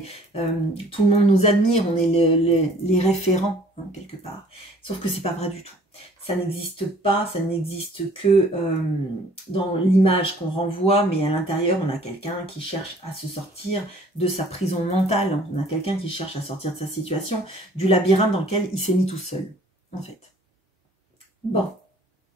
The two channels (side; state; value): both; normal; correlation 0.55